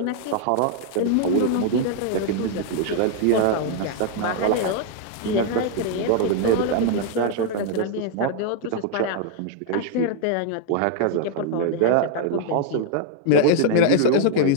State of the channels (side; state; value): both; different; correlation 0.00